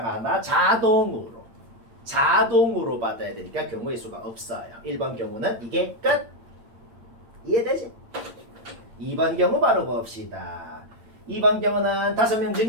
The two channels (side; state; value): left; late; 8.9 ms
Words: 하나 자동으로 받아야 되니까 경우의 수가 없어요. 1번 경우는 이게 끝. 이해되지? 2번 경우 바로 봅시다. 2번 경우는 5명